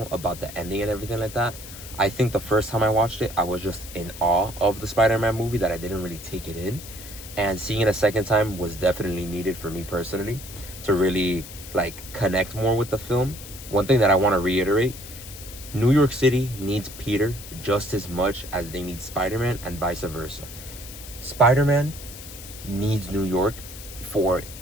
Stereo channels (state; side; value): noise; left; hiss, 14 dB below the sound